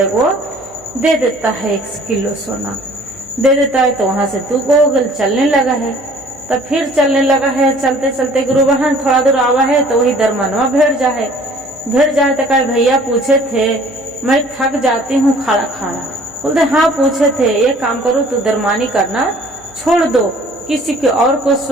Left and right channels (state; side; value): noise; left; hum, 26 dB below the sound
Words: को दे देता है 1 किलो सोना दे देता है तो वहां से तू गोगल चलने लगा है तब फिर चलने लगा है चलते चलते गुरु बहन थोड़ा दूर आवा है तो वही दरमनवा भेड़ जाए तो कहे भैया पूछे थे मैं थक जाती हूँ खाना खाना। बोलते हाँ पूछे थे एक काम करो तू दरमानी करना छोड़ दो किसी के और को